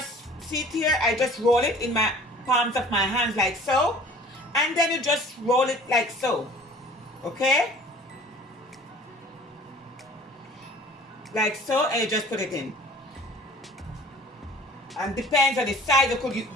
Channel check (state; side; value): normal; both; correlation 0.48